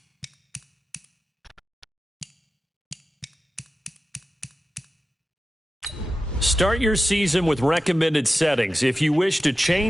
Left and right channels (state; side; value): normal; both; correlation 0.93